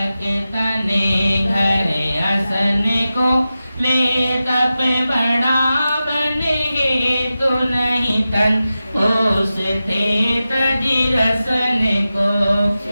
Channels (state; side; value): inverted; both; correlation -0.93